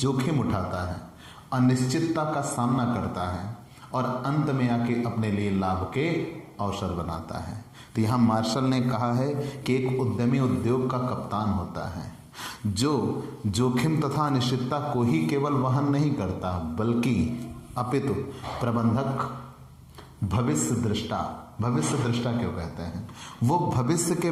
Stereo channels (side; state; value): both; identical; correlation 1.00